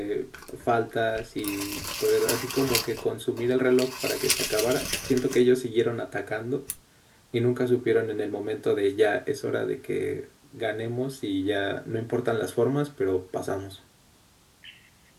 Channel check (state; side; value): identical; both; correlation 1.00